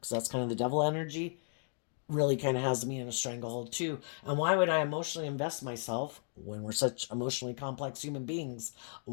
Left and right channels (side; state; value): right; silent; digital silence